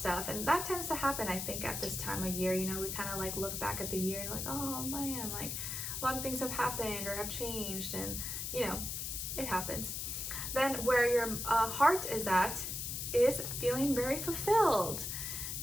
and that tends to happen, I think, at this time of year. You know, we kind of like look back at the year and like, oh man, like a lot of things have happened or have changed, and you know, it happens. Then where your heart is at is feeling very fulfilled.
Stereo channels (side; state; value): left; noise; hiss, 4 dB below the sound